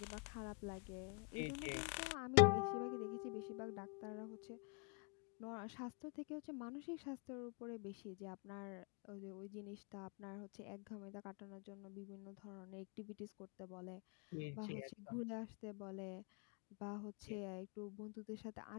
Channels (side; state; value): right; quieter; 33.8 dB